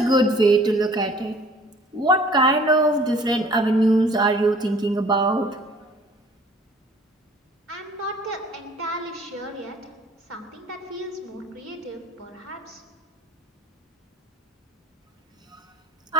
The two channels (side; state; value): both; normal; correlation 0.51